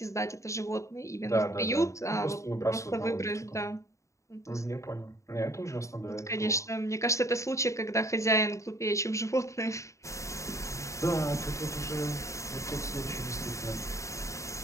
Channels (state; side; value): late; right; 0.15 ms